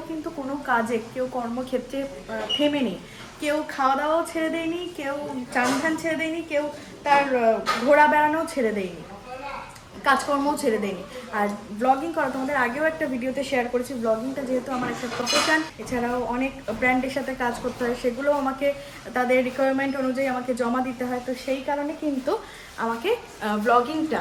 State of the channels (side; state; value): both; identical; correlation 1.00